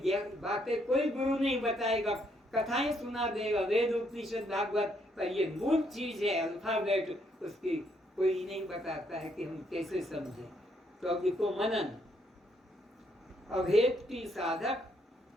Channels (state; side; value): normal; both; correlation 0.72